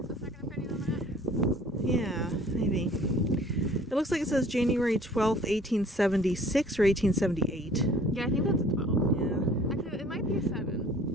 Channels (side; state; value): both; normal; correlation 0.52